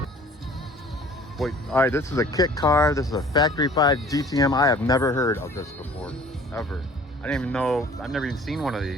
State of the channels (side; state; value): both; normal; correlation 0.50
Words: Wait, all right, this is a kit car. This is a Factory 5 GTM. I have never heard of this before, ever. I didn't even know, I've never even seen one of